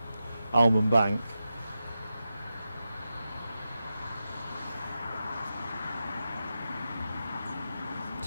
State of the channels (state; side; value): inverted; both; correlation -0.90